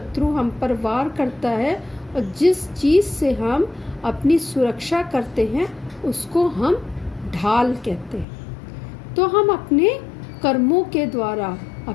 हम पर वार करता है और जिस चीज़ से हम अपनी सुरक्षा करते हैं उसको हम ढाल कहते हैं। तो हम अपने कर्मों के द्वारा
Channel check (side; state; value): right; drops out; at 8.2 s